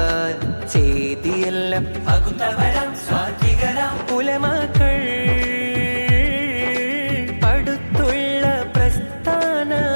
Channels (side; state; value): both; inverted; correlation -1.00